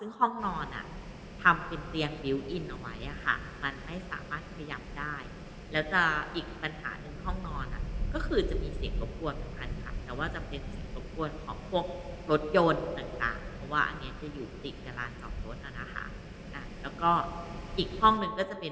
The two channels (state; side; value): identical; both; correlation 1.00